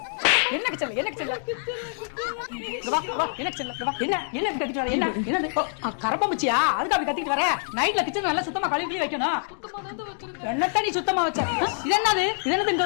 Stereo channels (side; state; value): right; silent; digital silence